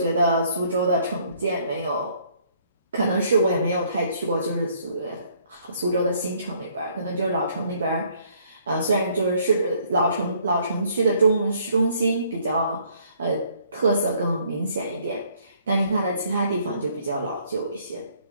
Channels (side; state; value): both; inverted; correlation -0.64